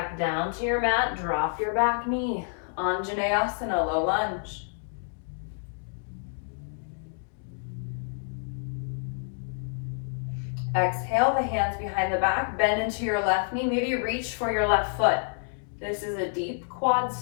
down to your mat. Drop your back knee. Anjaneyasana, low lunge. Exhale, the hands behind the back. Bend into your left knee. Maybe reach for your left foot. This is a deep quad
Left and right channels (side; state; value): right; silent; 59 dB below the other